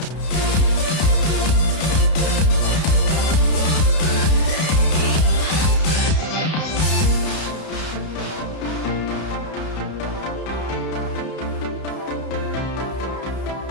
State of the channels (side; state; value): right; late; 32 ms